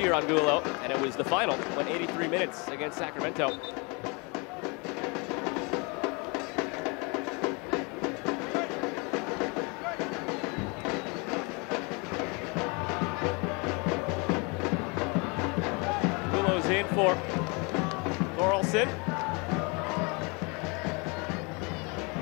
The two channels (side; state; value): right; quieter; 30.3 dB